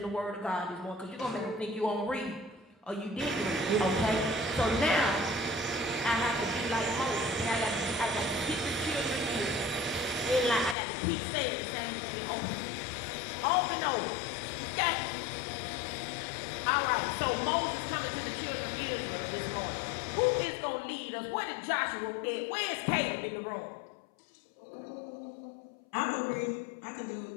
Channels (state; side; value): drops out; right; at 10.8 s